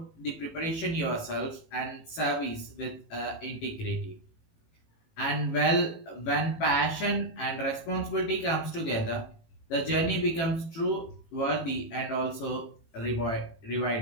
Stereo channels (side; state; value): right; late; 18 ms